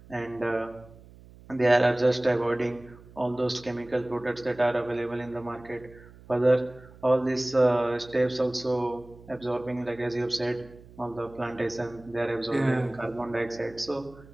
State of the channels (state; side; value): noise; right; hum, 22 dB below the sound